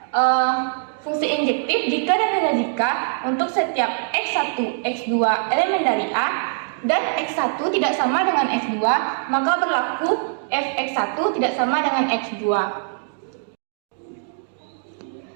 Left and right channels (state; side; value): silent; left; digital silence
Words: fungsi injektif jika dan hanya jika untuk setiap X1, X2 elemen dari A dan X1 tidak sama dengan X2, maka berlaku Fx1 tidak sama dengan X2.